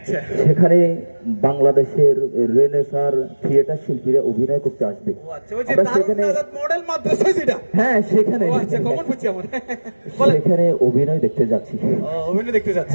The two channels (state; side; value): inverted; both; correlation -1.00